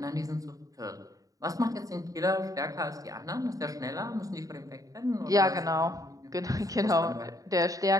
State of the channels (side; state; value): left; late; 0.17 ms